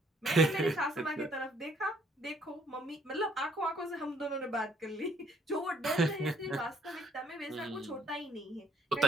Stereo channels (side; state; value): both; normal; correlation 0.64